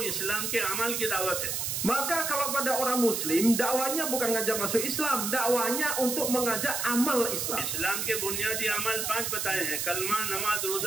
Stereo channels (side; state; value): right; noise; hiss, 1 dB below the sound